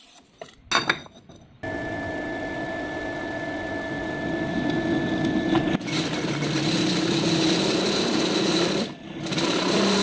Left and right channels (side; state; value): both; identical; correlation 1.00